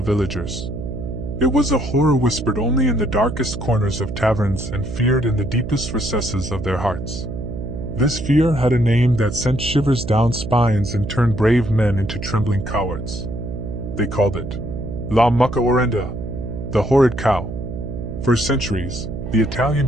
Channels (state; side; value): noise; right; hum, 7 dB below the sound